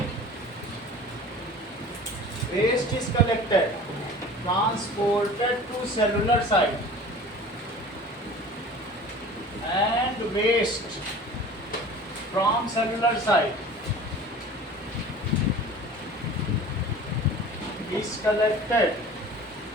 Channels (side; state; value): both; normal; correlation 0.41